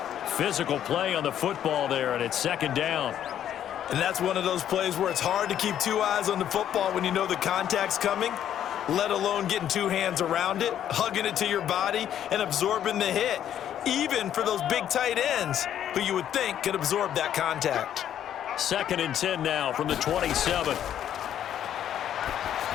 Physical play on the football there, and it's 2nd down. And that's one of those plays where it's hard to keep two eyes on the football when you know the contact's coming, let alone getting two hands around it, hugging it to your body, and absorbing the hit, even for those big tight ends who you would think could absorb that contact. 2nd and 10 now from the 27.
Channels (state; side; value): quieter; right; 10.4 dB